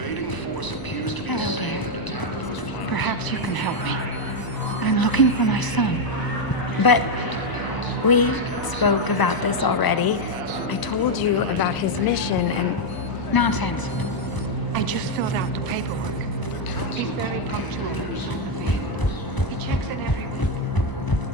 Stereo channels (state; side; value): late; right; 1.0 ms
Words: force appears to be the same that attacked those planets. Perhaps you can help me. I'm looking for my son. But we spoke about this already. I told you about his mission and... Nonsense. I just filled out the paperwork. He's very punctual. He checks in every week.